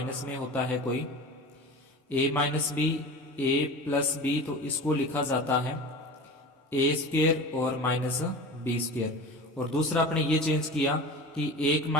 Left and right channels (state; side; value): normal; both; correlation 0.34